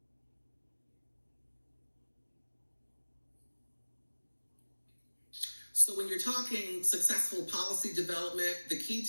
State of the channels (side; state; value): both; inverted; correlation -1.00